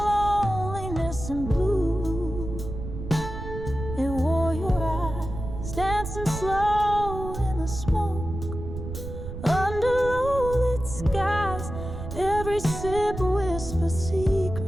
loneliness and blue, it wore your eyes dancing slow in the smoke under low-lit skies. Every sip whispers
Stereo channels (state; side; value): noise; right; rumble, 8 dB below the sound